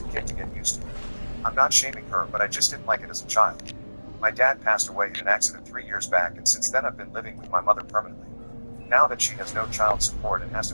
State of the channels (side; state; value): both; inverted; correlation -1.00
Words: a kid to get used to it. I'm not shaming her, but I just didn't like it as a child. My dad passed away in an accident 3 years back, and since then I've been living with my mother permanently. Now that she has no child support and has to